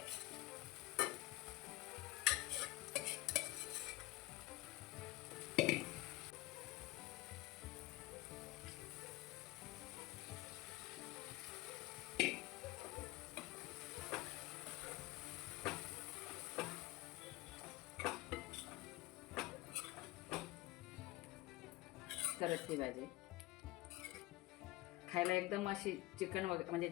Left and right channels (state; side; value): quieter; right; 19.3 dB